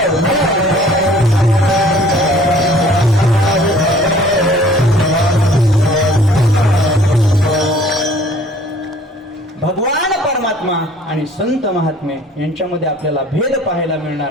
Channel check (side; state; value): both; normal; correlation 0.53